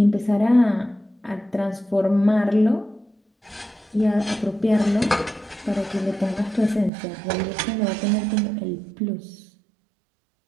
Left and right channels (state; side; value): drops out; left; at 6.9 s